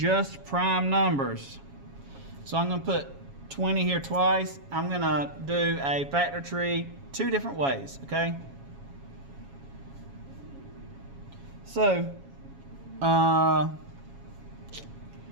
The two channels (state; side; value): late; left; 7.2 ms